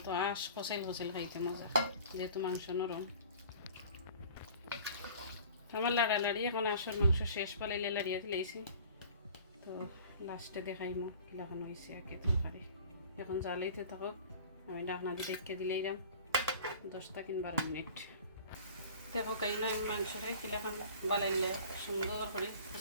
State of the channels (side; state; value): both; inverted; correlation -0.46